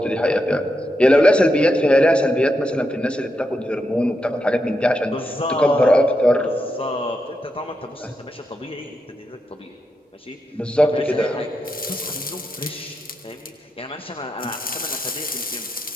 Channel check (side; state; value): both; normal; correlation 0.84